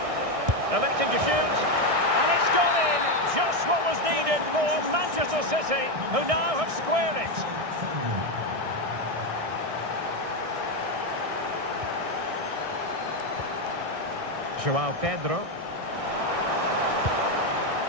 Electing to shoot. And it's gone in. Just what was needed for Manchester City, who now have squared it. João Pedro.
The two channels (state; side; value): late; left; 1.6 ms